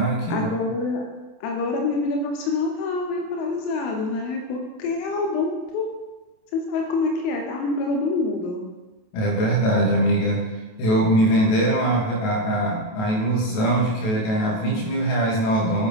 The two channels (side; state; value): right; late; 28 ms